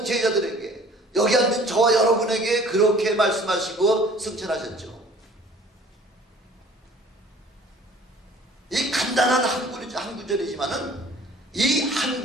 제자들에게, 여기 앉은 저와 여러분에게 그렇게 말씀하시고 승천하셨죠. 이 간단한 한 구절이지만은 이 한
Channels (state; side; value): normal; both; correlation 0.51